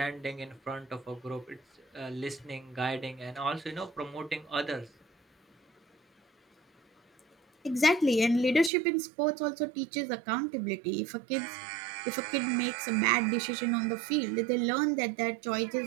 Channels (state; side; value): drops out; left; at 8.7 s